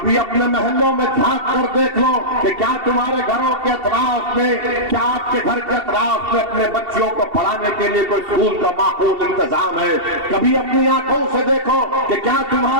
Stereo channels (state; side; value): late; left; 2.7 ms